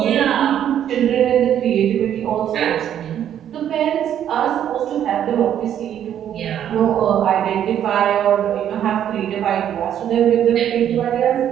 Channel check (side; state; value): left; quieter; 10.1 dB